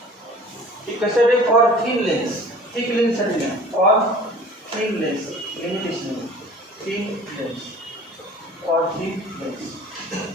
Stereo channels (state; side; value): normal; both; correlation 0.45